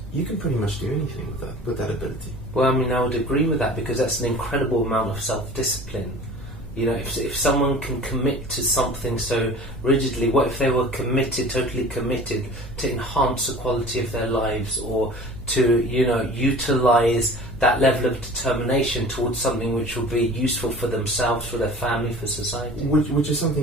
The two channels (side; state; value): right; noise; hum, 16 dB below the sound